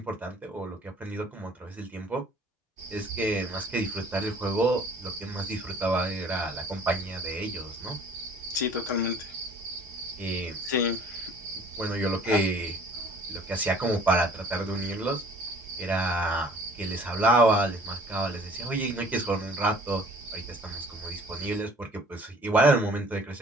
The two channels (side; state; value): both; normal; correlation 0.52